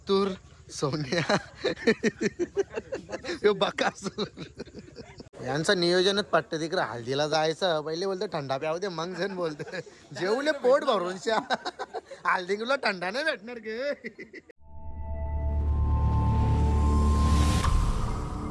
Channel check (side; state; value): both; identical; correlation 1.00